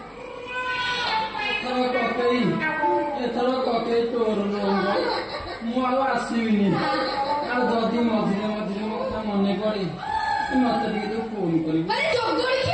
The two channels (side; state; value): both; identical; correlation 1.00